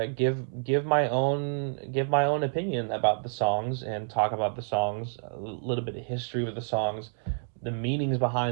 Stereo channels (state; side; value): silent; left; digital silence